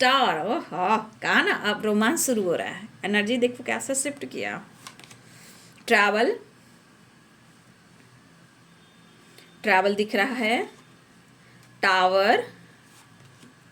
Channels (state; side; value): identical; both; correlation 1.00